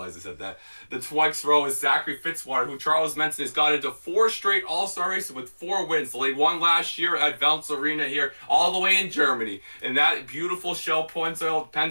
I said that. The next row is Zachary Fitzwater, who Charles mentioned has got into 4 straight All-Star races with 4 wins. They won last year at Valence Arena here, all the way in Germany. And that beautiful Shell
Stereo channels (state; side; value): inverted; both; correlation -1.00